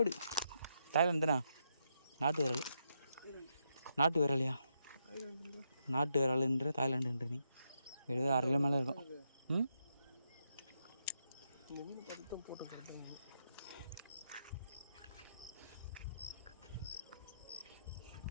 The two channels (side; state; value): both; inverted; correlation -0.80